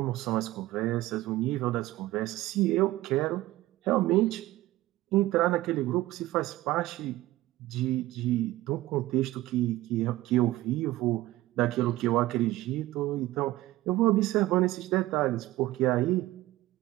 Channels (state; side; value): quieter; left; 16.8 dB